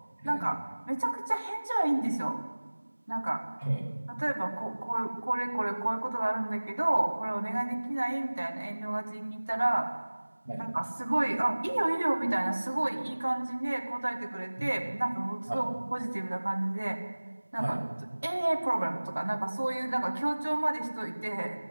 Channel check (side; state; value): both; inverted; correlation -1.00